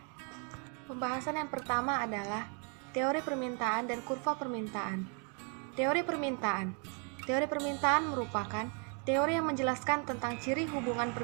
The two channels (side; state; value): left; quieter; 38.1 dB